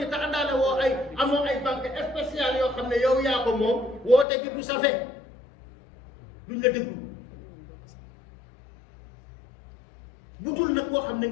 te àndaale woo ay amoo ay banque spéciale yoo xam ne yow yaa ko moom woote gi du safe duñ la déglu bu dul nag koo xam ne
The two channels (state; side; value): drops out; right; at 4.2 s